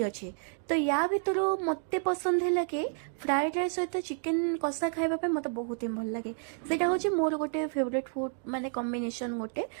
ଅଛି। ତ ୟା ଭିତରୁ ମୋତେ ପସନ୍ଦ ହେଲା କି ଫ୍ରାଏଡ୍ ରାଇସ୍ ସହିତ ଚିକେନ୍ କଷା ଖାଇବା ପାଇଁ ମୋତେ ବହୁତ ହିଁ ଭଲ ଲାଗେ। ସେଇଟା ହେଉଛି ମୋର ଗୋଟେ ଫେଭରେଟ୍ ଫୁଡ୍ ମାନେ କମ୍ବିନେସନ୍ ଗୋଟେ,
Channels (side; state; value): left; silent; 58 dB below the other